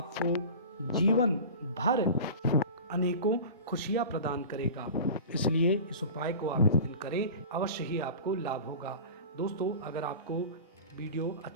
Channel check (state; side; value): inverted; both; correlation -0.35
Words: जीवन भर अनेकों खुशियाँ प्रदान करेगा। इसलिए इस उपाय को आप इस दिन करें, अवश्य ही आपको लाभ होगा। दोस्तों, अगर आपको वीडियो